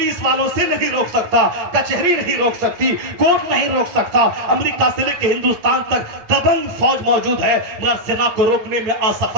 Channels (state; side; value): late; left; 9.0 ms